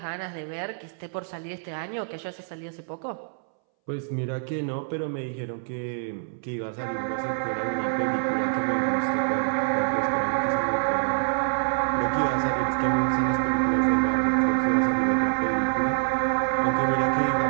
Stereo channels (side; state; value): left; silent; 61 dB below the other